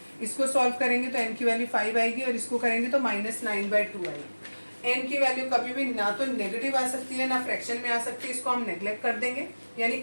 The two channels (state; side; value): inverted; both; correlation -1.00